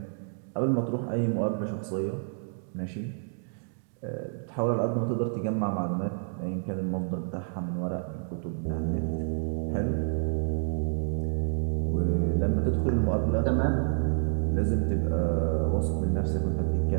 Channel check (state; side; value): silent; left; 59 dB below the other